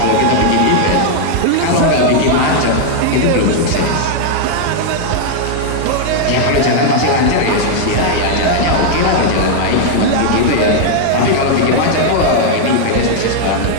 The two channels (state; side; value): different; both; correlation -0.01